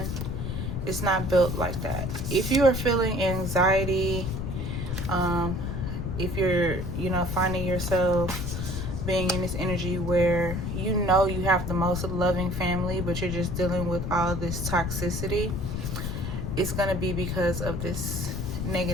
It's not built like that. If you are feeling anxiety, if you're, finding yourself being in this energy where you have the most loving family, but you're just dealing with all this toxicity, it's going to be because of this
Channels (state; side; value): noise; left; rumble, 3 dB below the sound